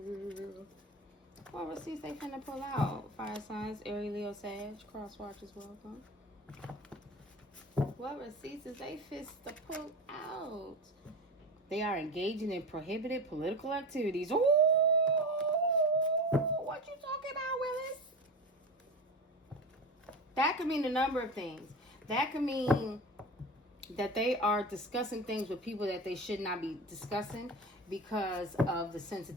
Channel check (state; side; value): normal; both; correlation 0.26